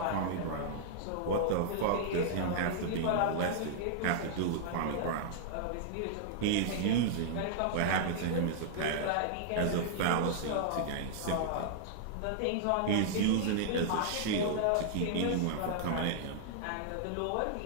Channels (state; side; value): different; both; correlation -0.01